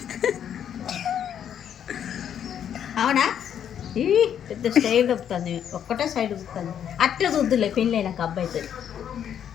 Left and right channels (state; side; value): quieter; right; 9.2 dB